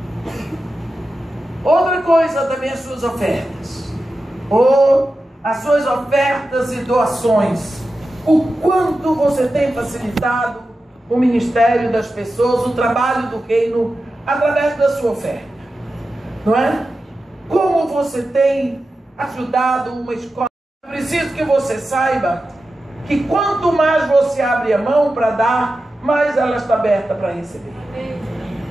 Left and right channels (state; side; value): normal; both; correlation 0.92